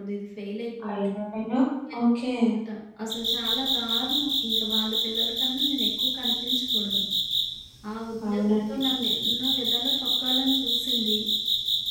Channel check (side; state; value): both; identical; correlation 1.00